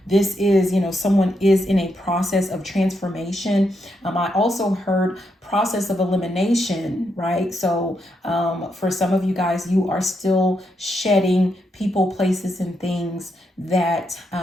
this is, someone is in a process of transformation. I also heard process of elimination, right? So for some of you guys, you are still shedding people, places, and things that,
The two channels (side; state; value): both; normal; correlation 0.81